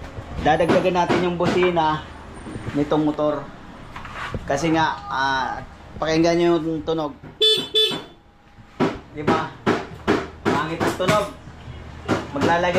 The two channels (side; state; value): both; identical; correlation 1.00